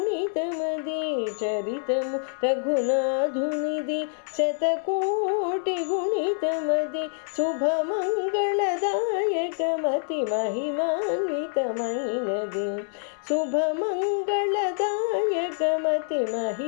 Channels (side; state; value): right; silent; 61 dB below the other